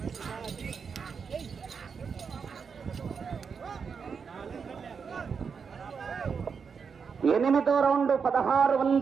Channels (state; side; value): quieter; left; 6.0 dB